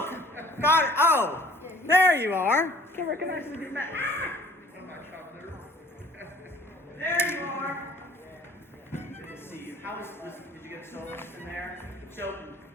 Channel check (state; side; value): normal; both; correlation 0.53